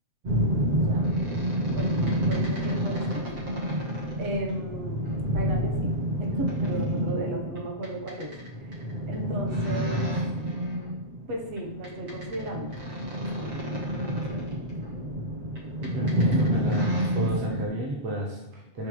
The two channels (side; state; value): left; late; 7.7 ms